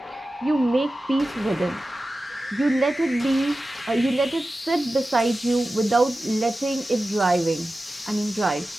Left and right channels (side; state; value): both; normal; correlation 0.94